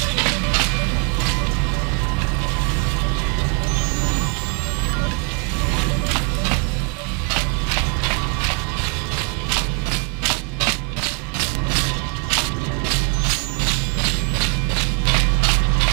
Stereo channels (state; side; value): quieter; left; 36.5 dB